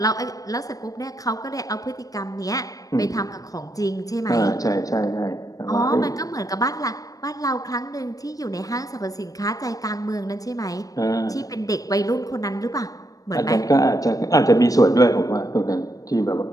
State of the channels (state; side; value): late; right; 0.17 ms